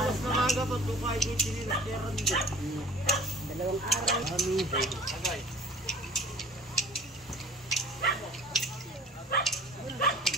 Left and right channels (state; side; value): normal; both; correlation 0.46